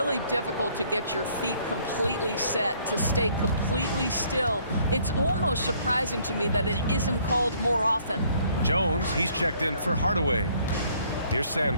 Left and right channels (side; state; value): both; inverted; correlation -0.63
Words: difficult to get your feet completely set, to stay completely still. It's almost surprising to me that it isn't called more often. Jones, he's checked in for Hardaway. Here's